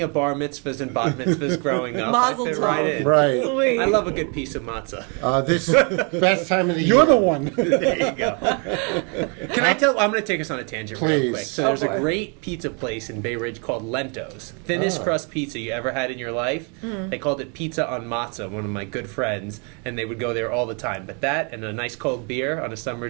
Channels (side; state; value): left; quieter; 35.9 dB